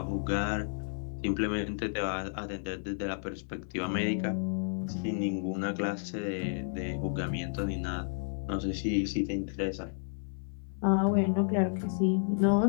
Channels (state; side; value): silent; right; 57 dB below the other